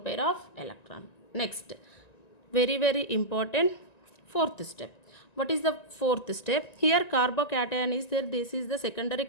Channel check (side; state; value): right; late; 1.9 ms